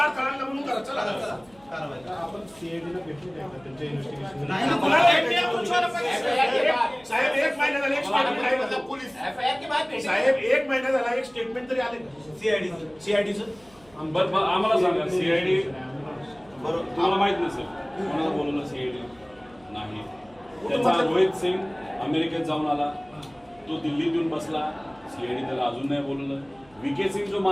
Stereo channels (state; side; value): noise; right; hum, 28 dB below the sound